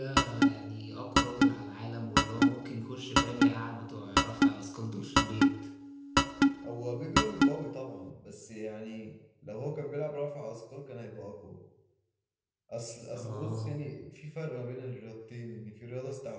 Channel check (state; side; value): identical; both; correlation 1.00